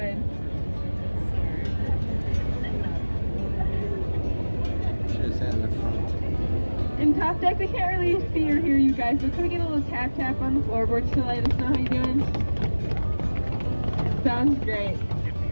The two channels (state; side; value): inverted; both; correlation -1.00